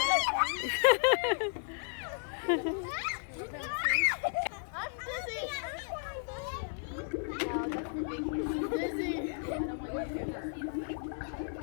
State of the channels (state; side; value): silent; right; 55 dB below the other